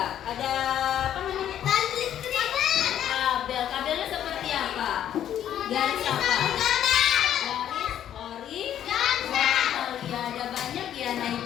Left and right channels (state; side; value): quieter; right; 10.6 dB